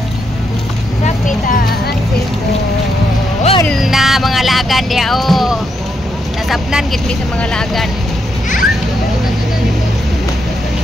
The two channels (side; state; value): both; normal; correlation 0.80